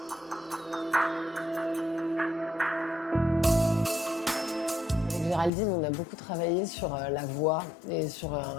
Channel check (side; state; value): right; drops out; at 5.5 s